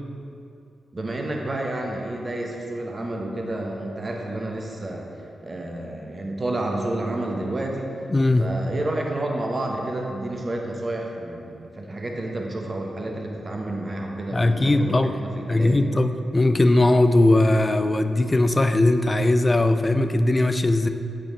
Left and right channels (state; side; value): normal; both; correlation 0.94